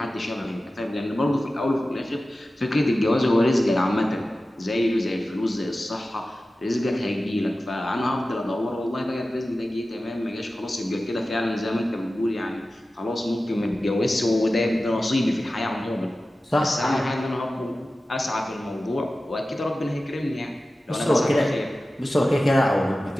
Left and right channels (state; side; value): normal; both; correlation 0.95